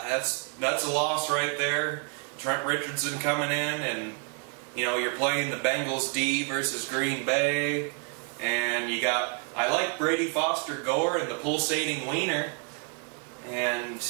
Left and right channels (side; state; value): left; quieter; 39.9 dB